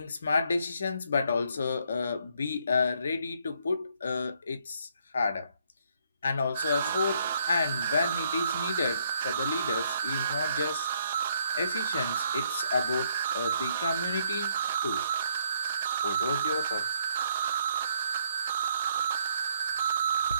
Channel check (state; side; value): inverted; both; correlation -0.70